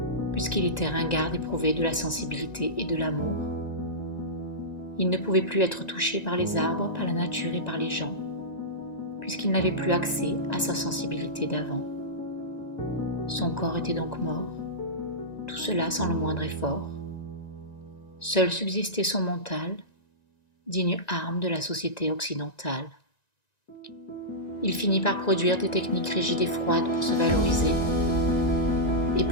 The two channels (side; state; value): right; late; 1.9 ms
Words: puisqu'il était ringard éprouvé de la sensibilité et de l'amour. Il ne pouvait plus être touché par les arbres, par la nature et par les gens, puisqu'il n'avait plus accès à sa sensibilité d'avant. Son corps était donc mort, tout cela sans le moindre effort. Seul subsistait son mental, digne arme de la société occidentale. Il finit par produire des techniques rigides et froides pour se valoriser et